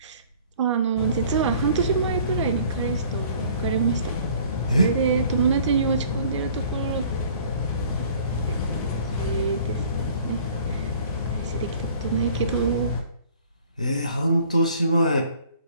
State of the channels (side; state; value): both; inverted; correlation -0.52